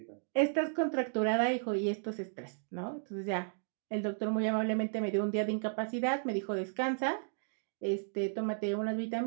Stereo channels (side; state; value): left; silent; digital silence